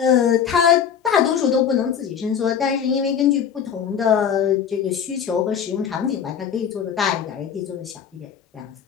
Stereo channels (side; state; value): right; quieter; 7.9 dB